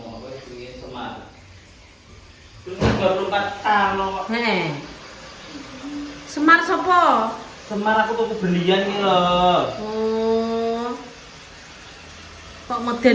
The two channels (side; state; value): both; identical; correlation 1.00